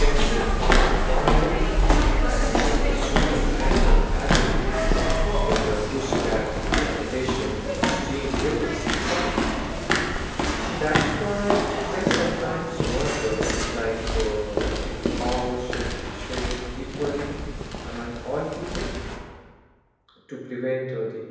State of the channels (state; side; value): identical; both; correlation 1.00